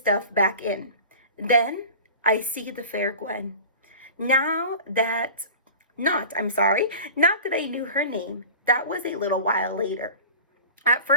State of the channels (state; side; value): inverted; both; correlation -0.37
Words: back in. Then I see the fair Gwen. Not that I knew her name. That was a little while later. At